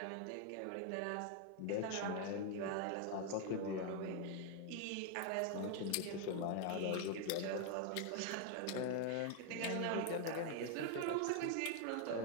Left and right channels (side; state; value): both; different; correlation 0.01